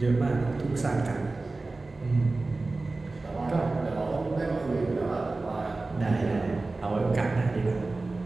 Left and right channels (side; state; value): left; quieter; 3.4 dB